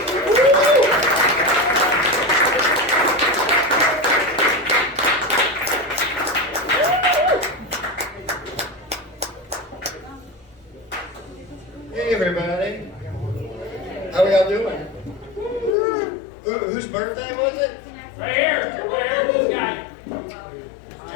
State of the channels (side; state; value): right; drops out; at 15.8 s